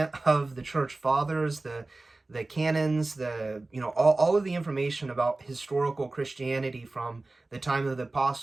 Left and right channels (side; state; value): left; quieter; 3.1 dB